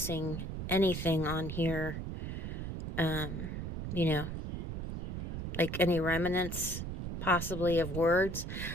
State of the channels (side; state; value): right; noise; rumble, 5 dB below the sound